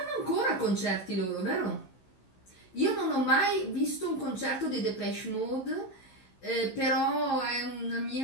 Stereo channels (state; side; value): late; right; 16 ms